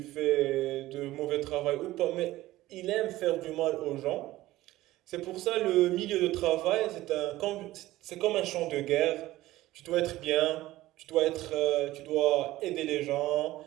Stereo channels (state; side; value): quieter; left; 16.6 dB